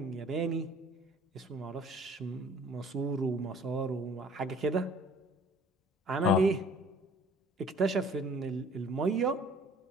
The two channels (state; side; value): normal; both; correlation 0.52